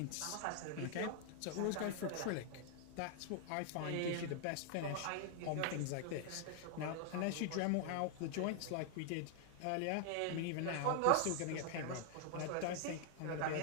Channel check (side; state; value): both; different; correlation 0.00